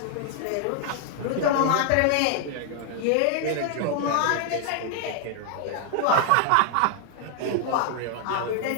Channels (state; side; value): different; both; correlation 0.00